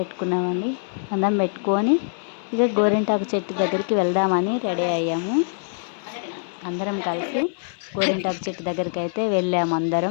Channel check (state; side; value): silent; right; digital silence